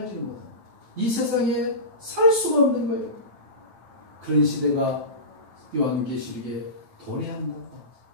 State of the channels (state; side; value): late; left; 9.1 ms